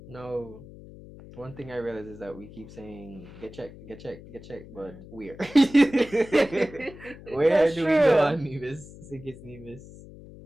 No, one thing I realize is that we keep saying get checked, get checked, get checked, but where? Where That's do we go true. on Nevis, Sikis Nevis,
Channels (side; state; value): left; noise; hum, 17 dB below the sound